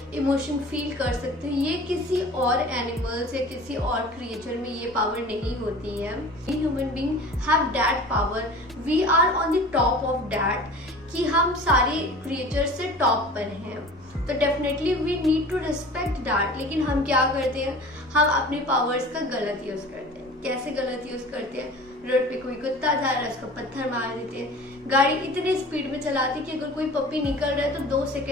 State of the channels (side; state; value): both; normal; correlation 0.41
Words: इमोशन फील कर सकते हो। ये किसी और एनिमल्स या किसी और क्रिएचर में ये पावर नहीं होती है। We human being have that power, we are on the top of that, कि हम सारे क्रिएचर से टॉप पर हैं। तो definitely we need to respect that. लेकिन हम क्या करते हैं, हम अपनी पावर्स का गलत यूज़ करते हैं। कैसे गलत यूज़ करते हैं? रोड पे कोई कुत्ता जा रहा है उसको पत्थर मार देते हैं। गाड़ी इतनी स्पीड में चलाती कि अगर कोई पपी निकल रहा है तो 2